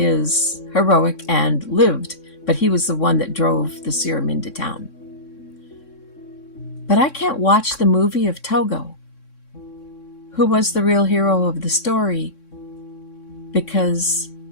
heroic and lived, but he was the one that drove the serum into town. But I can't watch the movie of Togo, who was the real hero of the story, because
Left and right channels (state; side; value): late; right; 3.6 ms